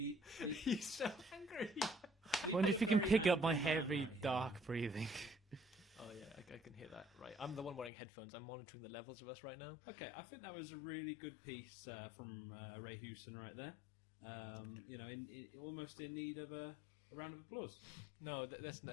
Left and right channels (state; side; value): drops out; right; at 7.9 s